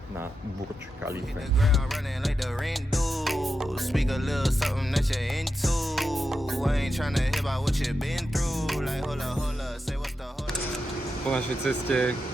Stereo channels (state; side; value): normal; both; correlation 0.88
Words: na Burj Khalifa. Speak a little something that you're into. I ain't tryna hear about what you've been through. Like hola, say what's the hola. Po našej ceste